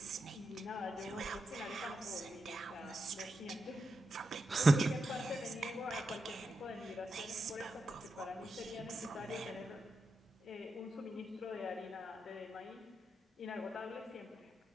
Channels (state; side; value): normal; both; correlation 0.87